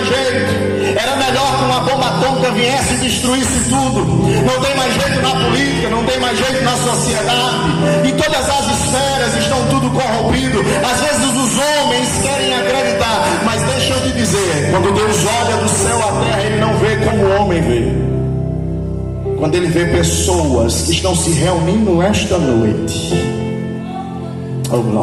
jeito, era melhor que uma bomba atômica viesse e destruísse tudo, não tem mais jeito na política, não tem mais jeito na sociedade, e todas as esferas estão tudo corrompido. Às vezes os homens querem acreditar, mas deixa eu te dizer, quando Deus olha do céu à terra, Ele não vê como o homem vê. Quando Ele vê pessoas que estão se reunindo esta noite, oh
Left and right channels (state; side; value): identical; both; correlation 1.00